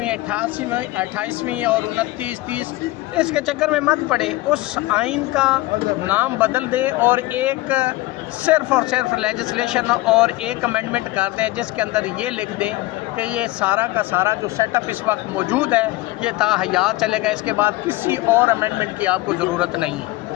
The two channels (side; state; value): right; quieter; 19.1 dB